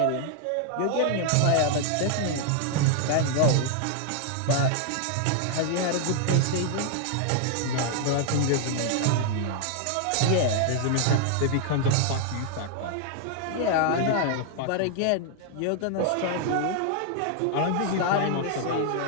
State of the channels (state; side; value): different; both; correlation 0.00